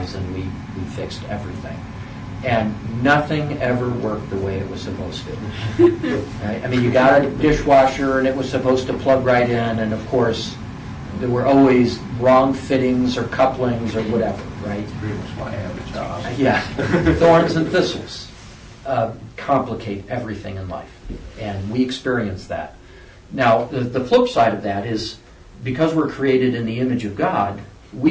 and we fixed everything. And nothing ever worked the way it was supposed to. Right? I mean, you got a dishwasher, and it was supposed to plug right in, and of course, there were always wrong fittings or couplings or whatever, right? That's pretty much why I have a job. Yeah. Thorns and thistles complicate everything in life, and we experience that. Now, the flip side of that is, because we're created in the image of God,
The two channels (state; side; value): identical; both; correlation 1.00